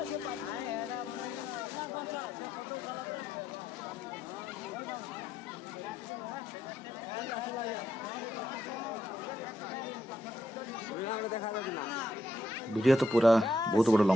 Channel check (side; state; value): both; normal; correlation 0.77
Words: वीडियो तो पूरा बहुत बड़ा